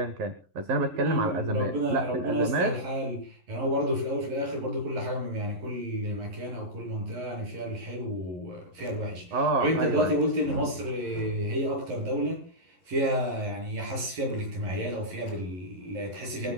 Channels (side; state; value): left; late; 11 ms